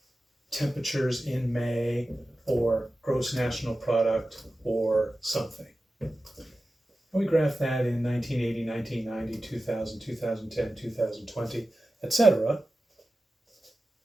temperatures in May or gross national product or something. And we graph that in 1980, 1990, 2000, 2010, 2020, etc.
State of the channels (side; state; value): both; normal; correlation 0.94